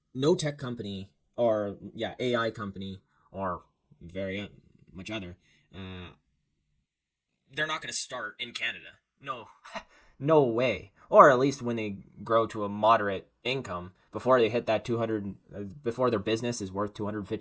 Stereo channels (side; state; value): both; identical; correlation 1.00